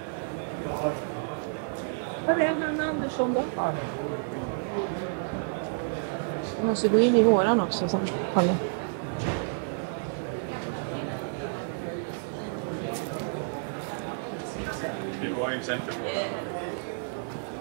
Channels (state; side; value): silent; left; digital silence